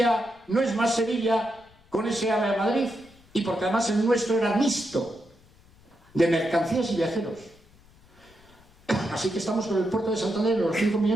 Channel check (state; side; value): noise; left; rumble, 28 dB below the sound